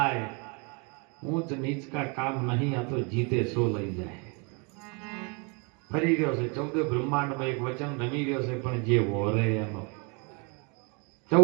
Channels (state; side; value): quieter; left; 32.9 dB